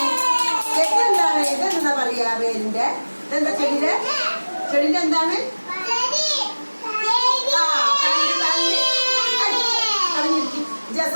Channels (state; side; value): inverted; both; correlation -1.00